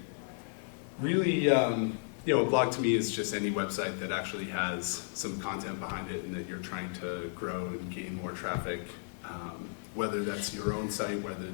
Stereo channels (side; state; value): right; silent; 55 dB below the other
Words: really, a blog to me is just any website that actually has some content behind it and that you're trying to grow and gain more traffic, whether that's your own site, whether